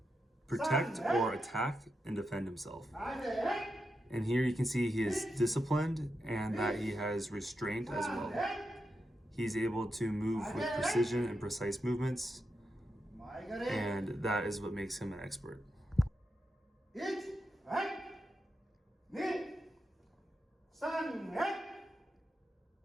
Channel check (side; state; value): both; normal; correlation 0.87